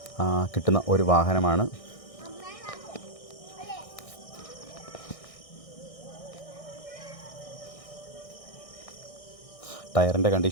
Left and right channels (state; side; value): late; right; 1.6 ms